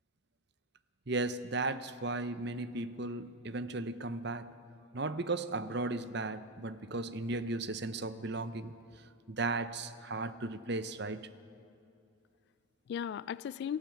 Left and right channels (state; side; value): normal; both; correlation 0.11